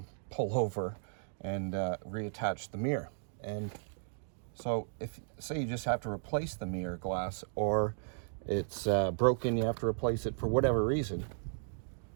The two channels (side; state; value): left; silent; digital silence